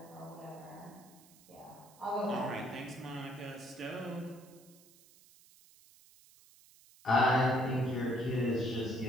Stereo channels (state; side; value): noise; right; hiss, 25 dB below the sound